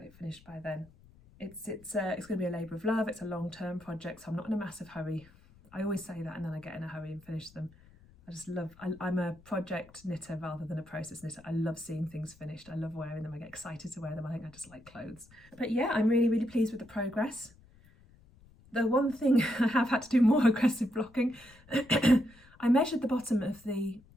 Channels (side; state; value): left; noise; rumble, 26 dB below the sound